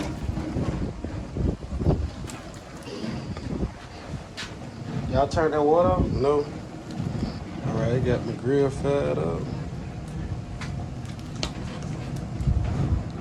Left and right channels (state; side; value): identical; both; correlation 1.00